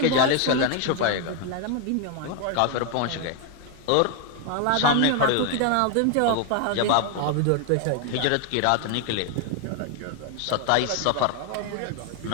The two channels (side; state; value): both; different; correlation 0.01